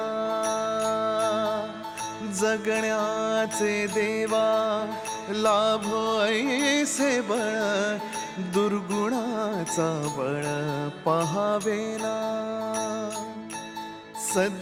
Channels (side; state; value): both; identical; correlation 1.00